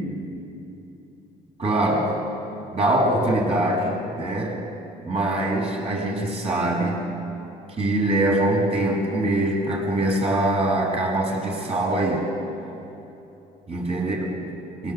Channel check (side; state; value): both; normal; correlation 0.50